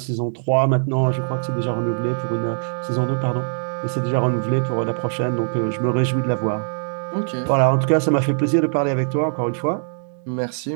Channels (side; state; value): left; silent; digital silence